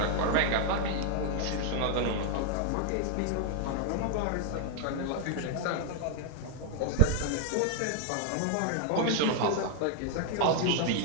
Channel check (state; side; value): different; both; correlation 0.00